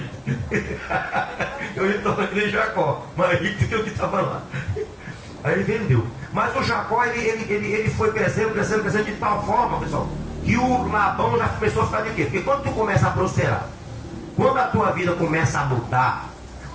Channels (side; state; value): both; identical; correlation 1.00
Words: Eu ia tornar de Jacó, mais rico do que o que estava lá. Aí ele vendeu. Mas o Jacó, ele foi crescendo de tal forma, pessoal, que o Labão já começou a ficar de quê? Porque quando tu começa a prosperar, quando a tua vida começa a mudar,